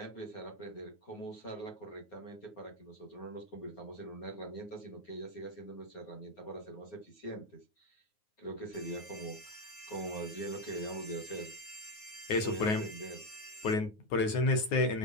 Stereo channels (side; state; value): right; late; 9.5 ms